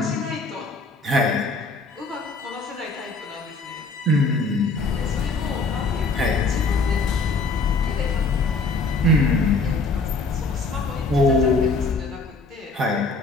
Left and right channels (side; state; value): right; quieter; 3.5 dB